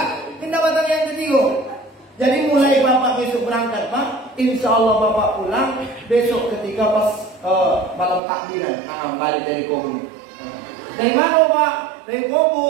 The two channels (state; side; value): drops out; left; at 8.2 s